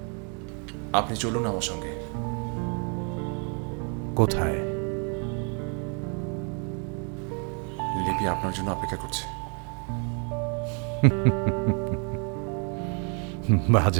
আপনি চলুন আমার সঙ্গে। কোথায়? লিপি আপনার জন্য অপেক্ষা করছে।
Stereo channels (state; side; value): quieter; left; 38.6 dB